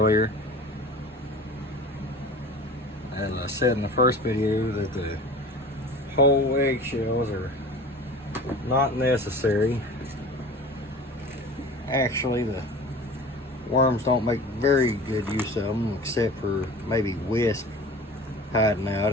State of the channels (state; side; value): normal; both; correlation 0.39